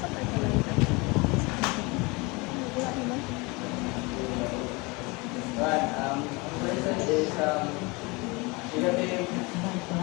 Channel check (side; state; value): right; quieter; 26.3 dB